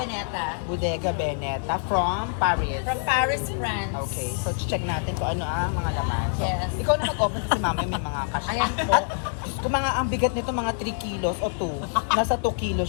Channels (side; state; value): right; silent; digital silence